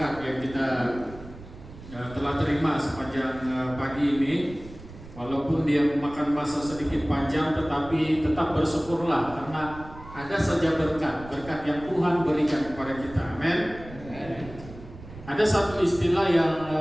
yang kita telah terima sepanjang pagi ini. Walaupun dia memakan masa sedikit panjang, tetapi tetap bersyukurlah karena ada saja berkat yang Tuhan berikan kepada kita. Amin. Ada satu istilah yang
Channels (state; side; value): noise; right; rumble, 16 dB below the sound